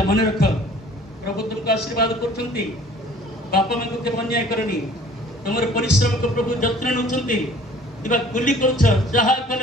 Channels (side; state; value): both; normal; correlation 0.52